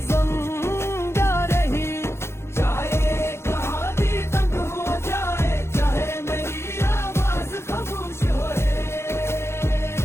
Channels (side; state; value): right; late; 0.12 ms